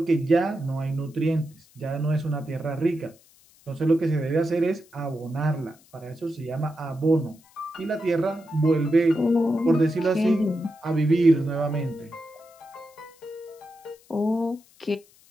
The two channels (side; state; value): left; noise; hiss, 29 dB below the sound